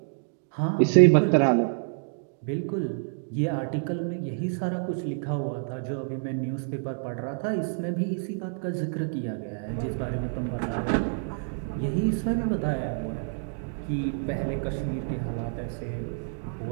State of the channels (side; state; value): left; silent; digital silence